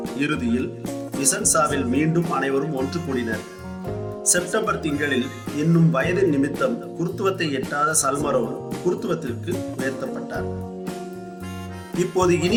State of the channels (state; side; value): identical; both; correlation 1.00